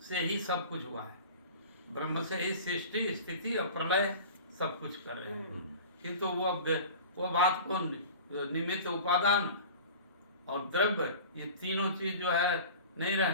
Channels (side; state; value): both; inverted; correlation -0.39